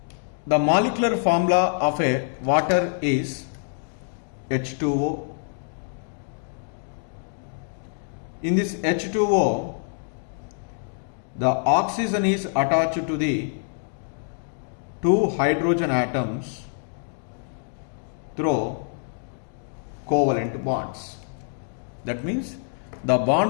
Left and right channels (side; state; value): right; silent; digital silence